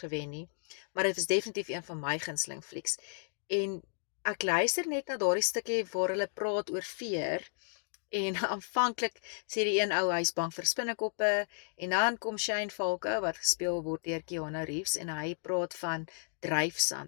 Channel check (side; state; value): right; silent; digital silence